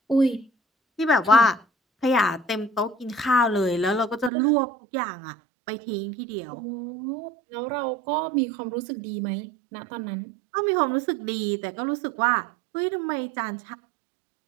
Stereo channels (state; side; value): drops out; left; at 4.3 s